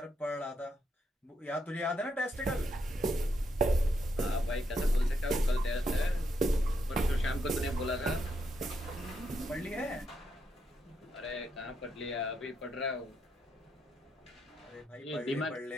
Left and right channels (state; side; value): normal; both; correlation 0.79